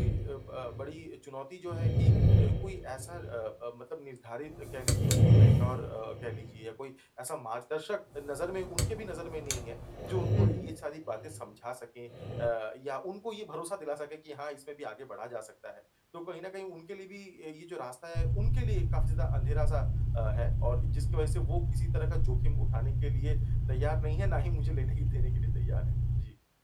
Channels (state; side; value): identical; both; correlation 1.00